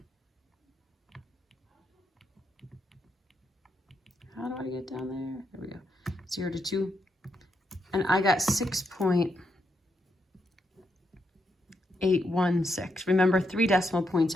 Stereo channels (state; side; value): normal; both; correlation 0.81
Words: How do I get down there? There we go. 0 to 2. And I got 6.816. Remember, 3 decimal points